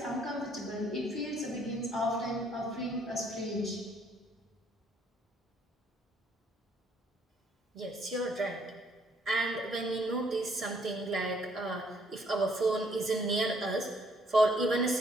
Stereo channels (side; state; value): both; normal; correlation 0.66